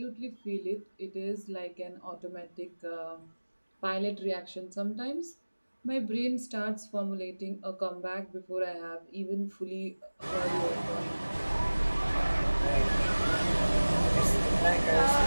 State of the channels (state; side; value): inverted; both; correlation -1.00